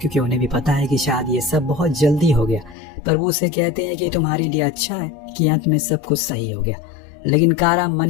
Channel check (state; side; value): drops out; right; at 2.8 s